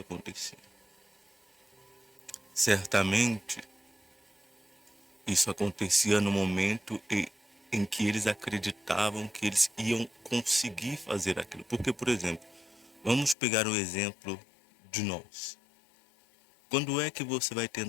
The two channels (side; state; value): right; drops out; at 13.4 s